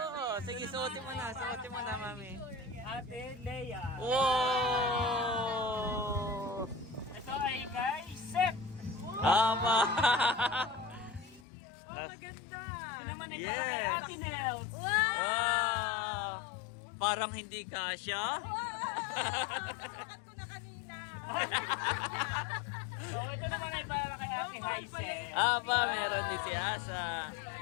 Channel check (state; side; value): drops out; right; at 11.5 s